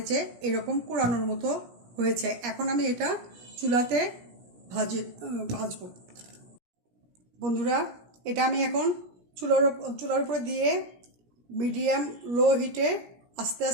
যে এরকম কুড়ানোর মতো হয়েছে। এখন আমি এটা চুলাতে ভাজবো। বন্ধুরা, এটা আমি এখন চুলার উপরে দিয়ে মিডিয়াম লো হিটে আস্তে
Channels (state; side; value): late; left; 17 ms